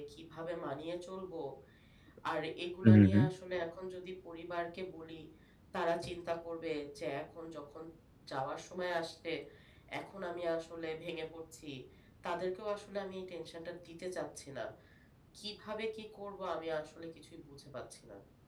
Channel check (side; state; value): both; identical; correlation 1.00